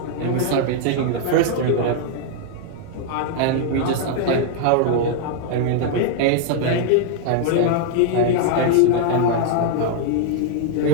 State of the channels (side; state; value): both; different; correlation 0.00